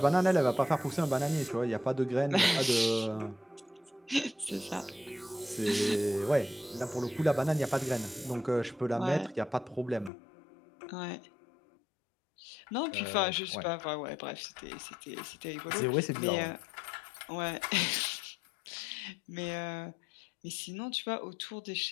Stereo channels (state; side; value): drops out; right; at 10.1 s